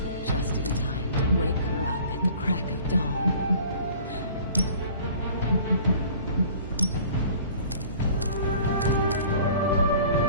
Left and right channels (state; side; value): inverted; both; correlation -0.48